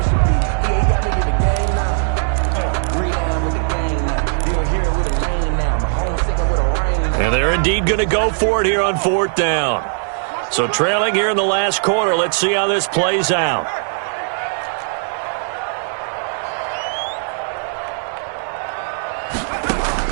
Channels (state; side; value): silent; left; digital silence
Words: And they're indeed going to go for it here on 4th down. So trailing here in the last quarter. Let's see how this plays out.